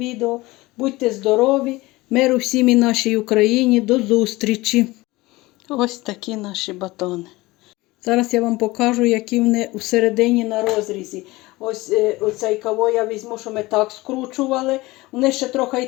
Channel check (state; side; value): quieter; right; 20.4 dB